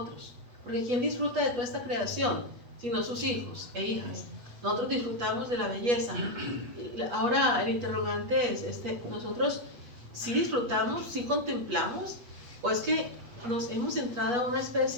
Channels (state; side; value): late; left; 8.3 ms